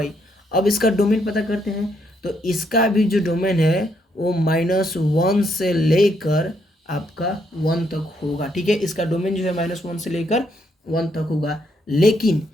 अब इसका डोमेन पता करते हैं, तो इसका भी जो डोमेन है वो -1 से लेकर आपका 1 तक होगा। ठीक है, इसका डोमेन जो है -1 से लेकर 1 तक होगा। लेकिन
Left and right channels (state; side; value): normal; both; correlation 0.74